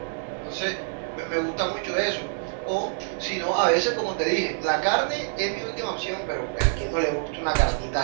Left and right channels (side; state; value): left; silent; digital silence